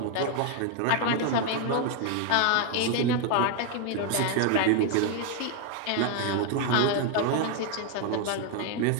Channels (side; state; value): both; different; correlation 0.01